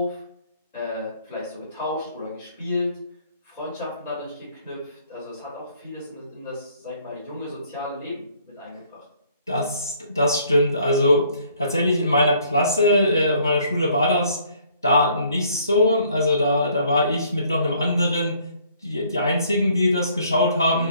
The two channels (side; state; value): both; inverted; correlation -0.61